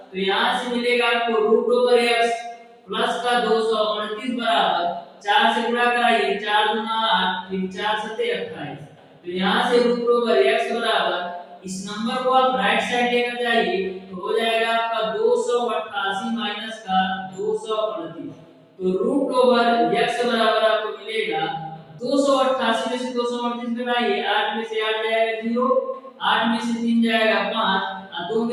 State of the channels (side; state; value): both; identical; correlation 1.00